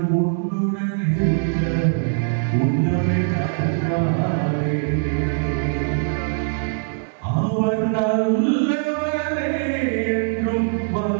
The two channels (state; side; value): silent; left; digital silence